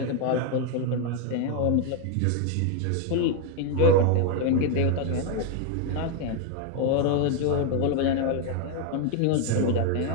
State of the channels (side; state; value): both; different; correlation 0.01